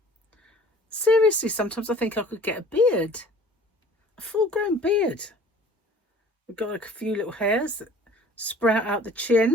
seriously, sometimes I think I could get a beard. A full-grown beard. I've got like a few little hairs that sprout out the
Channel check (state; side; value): normal; both; correlation 0.48